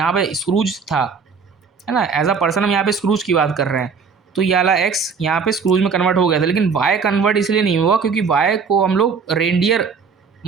पे स्क्रूज था, है ना। एज अ पर्सन हम यहाँ पे स्क्रूज की बात कर रहे हैं, तो ये वाला एक्स यहाँ पे स्क्रूज में कन्वर्ट हो गया था, लेकिन वाई कन्वर्ट इसलिए नहीं हुआ क्योंकि वाई को हम लोग रेंडियर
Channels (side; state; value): left; quieter; 5.6 dB